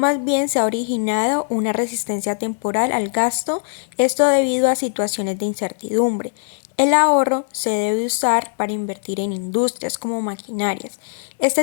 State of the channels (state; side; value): silent; right; digital silence